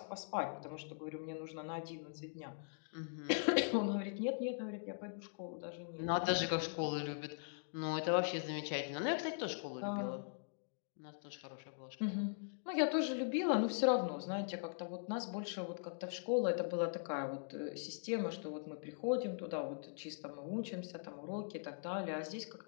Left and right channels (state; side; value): silent; right; digital silence